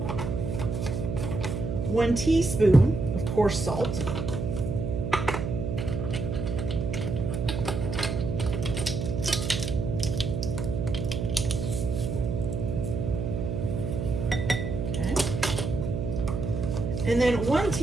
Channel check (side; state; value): right; noise; hum, 3 dB below the sound